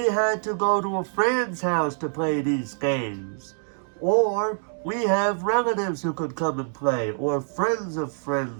had to go to a friend's house to play these games. Or we have relatives who could come and play, or friends of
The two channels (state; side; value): silent; left; 62 dB below the other